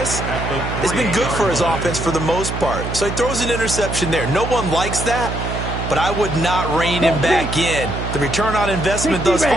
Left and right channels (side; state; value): right; noise; hum, 5 dB below the sound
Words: has been good for his offense for the most part. So he throws an interception there. No one likes that, but I would not rein him back in. The return on investment thus